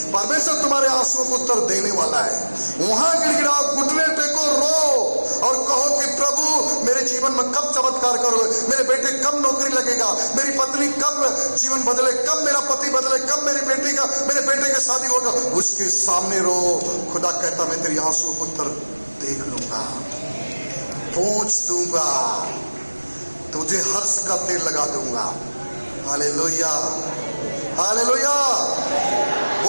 परमेश्वर तुम्हारे आंसुओं को उत्तर देने वाला है। वहां गिड़गिड़ाओ, घुटने टेको, रो और कहो कि प्रभु मेरे जीवन में कब चमत्कार करोगे, मेरे बेटे कब नौकरी लगेगा, मेरी पत्नी कब जीवन बदले, कब मेरा पति बदले, कब मेरे बेटे की शादी होगा। उसके सामने रो। खुदा कहता मैं तेरी आंसुओं को उत्तर देख लूंगा, पहुंच दूंगा, तुझे हर्ष का तेल लगा दूंगा। Hallelujah, hallelujah.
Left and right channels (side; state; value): both; inverted; correlation -1.00